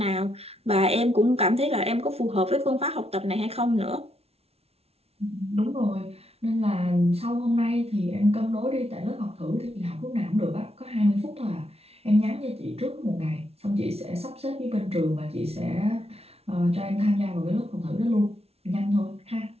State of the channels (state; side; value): late; left; 0.30 ms